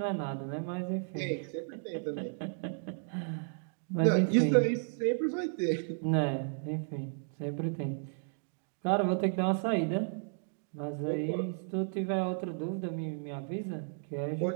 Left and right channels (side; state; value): left; silent; digital silence